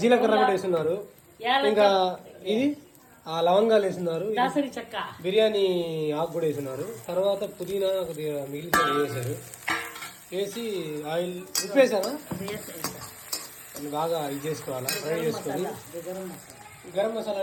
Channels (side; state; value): both; identical; correlation 1.00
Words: జీలకర్ర కూడా వేస్తున్నారు. ఇంకా ఇది లవంగాలు వేస్తున్నారు, బిర్యానీ ఆకు కూడా వేస్తున్నారు. తర్వాత పుదీనా కొద్దిగా మిగిలిన వేసారు. వేసి ఆయిల్ ఉప్పు వేసారా, బాగా ఇది చేసుకోవాలా, ఫ్రై చేసుకొని. గరం మసాలా